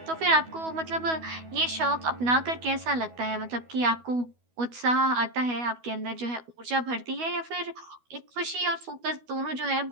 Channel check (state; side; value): late; left; 12 ms